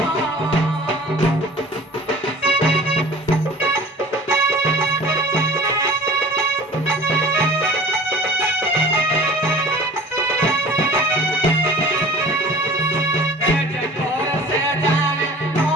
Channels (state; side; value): normal; both; correlation 0.44